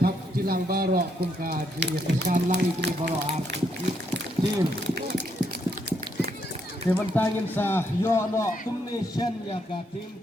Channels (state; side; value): normal; both; correlation 0.75